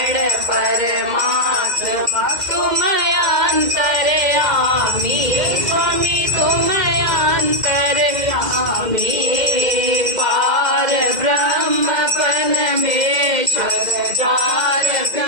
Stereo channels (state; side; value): late; left; 2.0 ms